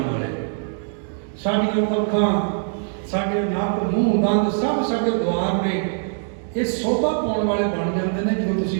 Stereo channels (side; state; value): left; silent; digital silence